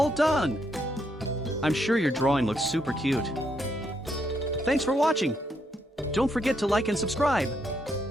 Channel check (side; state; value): both; normal; correlation 0.76